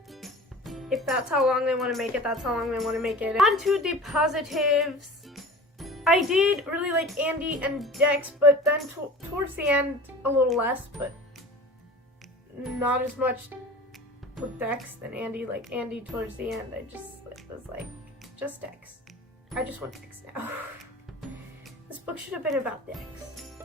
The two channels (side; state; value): both; normal; correlation 0.38